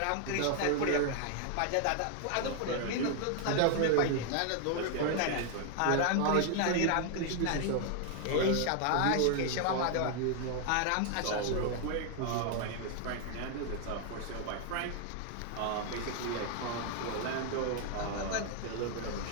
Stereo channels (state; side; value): different; both; correlation 0.00